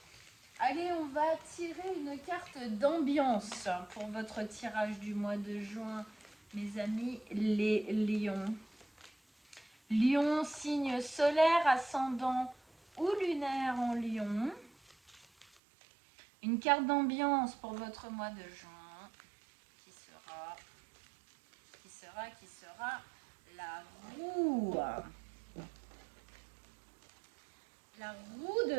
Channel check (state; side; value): drops out; left; at 15.5 s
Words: Allez, on va tirer une carte d'ambiance pour votre tirage du mois de juin, mes amis les lions. Lion, signe solaire, ascendant ou lunaire en lion. Une carte d'ambiance pour votre mois de juin qui sera la roue. La roue de